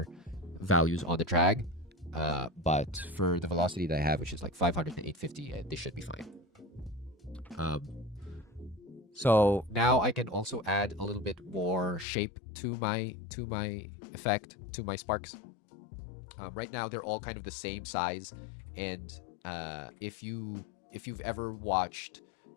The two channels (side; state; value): right; drops out; at 12.1 s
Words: values on the drag. But for the velocity that I have, which is like 500 to 850, this should be fine. So now I can also add a little bit more shape to my effect, to my sparks. Right now they're all kind of the same size, and if you've ever watched